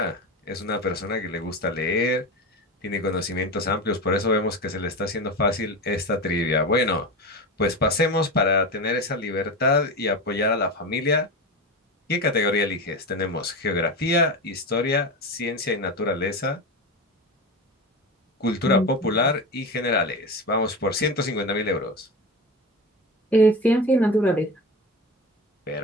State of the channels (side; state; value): both; normal; correlation 0.24